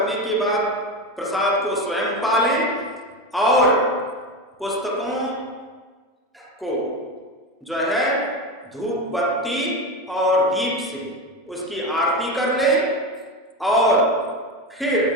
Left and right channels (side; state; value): both; normal; correlation 0.19